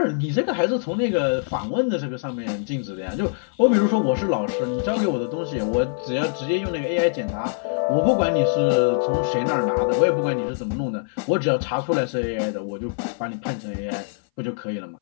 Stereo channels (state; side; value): silent; right; 59 dB below the other